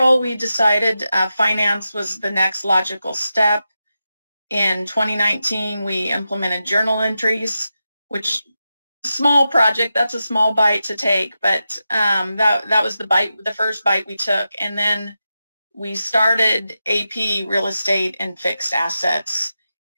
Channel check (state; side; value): inverted; both; correlation -0.90